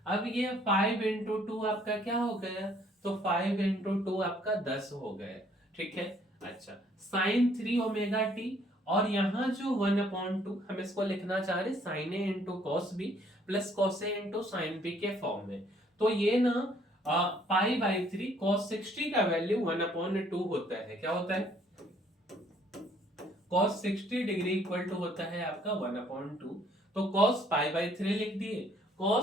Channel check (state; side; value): normal; both; correlation 0.63